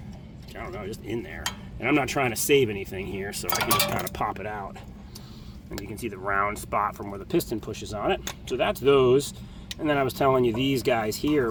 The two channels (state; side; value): identical; both; correlation 1.00